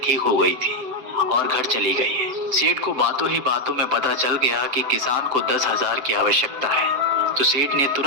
ठीक हो गई थी और घर चली गई है। सेठ को बातों ही बातों में पता चल गया कि किसान को 10,000 की आवश्यकता है। तो सेठ ने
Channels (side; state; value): left; late; 7.8 ms